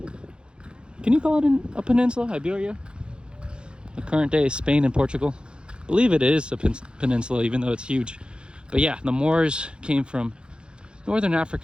Can you call it a peninsula, Iberia? The current day is Spain and Portugal. I believe it is a peninsula, even though it's huge. But yeah, the Moors came from Northern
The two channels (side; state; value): left; late; 0.052 ms